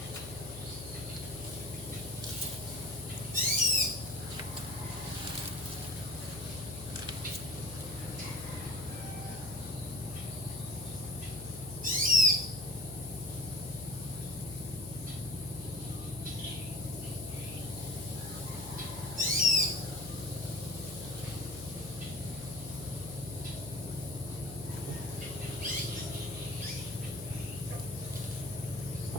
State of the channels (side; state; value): left; noise; hum, 12 dB below the sound